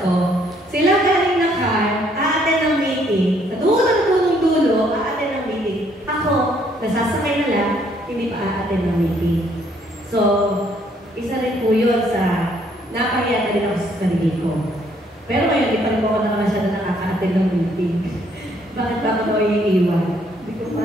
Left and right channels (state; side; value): normal; both; correlation 0.67